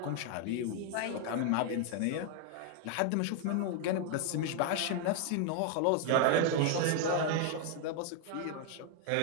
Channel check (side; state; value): both; different; correlation 0.00